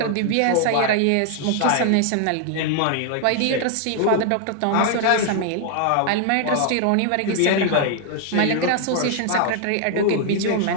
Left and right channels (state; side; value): different; both; correlation 0.00